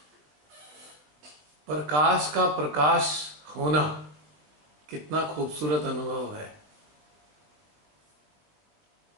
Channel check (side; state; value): left; late; 20 ms